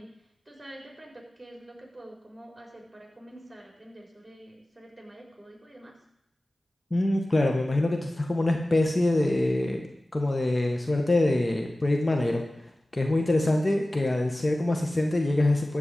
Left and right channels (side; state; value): both; normal; correlation 0.96